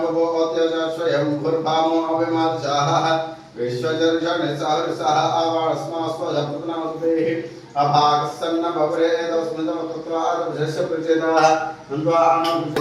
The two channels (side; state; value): both; identical; correlation 1.00